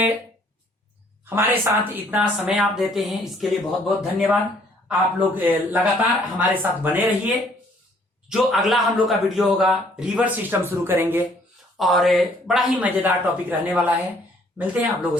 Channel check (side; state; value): both; normal; correlation 0.62